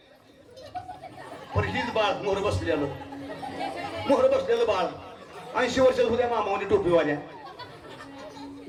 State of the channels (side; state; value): both; identical; correlation 1.00